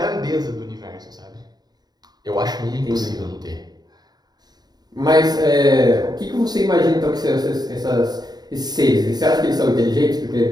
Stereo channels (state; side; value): late; left; 0.20 ms